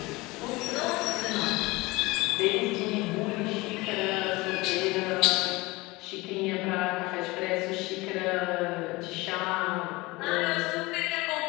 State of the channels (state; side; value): quieter; right; 22.3 dB